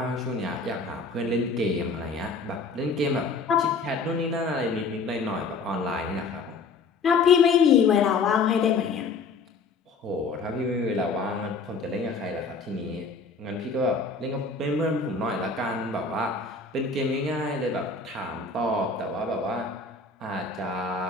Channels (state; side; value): quieter; right; 4.3 dB